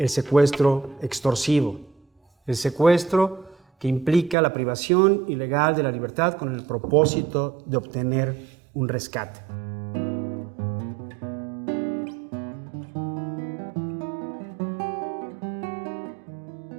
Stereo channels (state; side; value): drops out; left; at 4.4 s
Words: secuestro extorsivo, el secuestro que implica la privación ilegal de la libertad con el propósito de obtener un rescate.